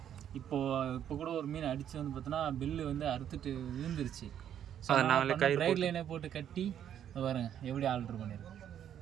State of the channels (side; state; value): left; quieter; 9.9 dB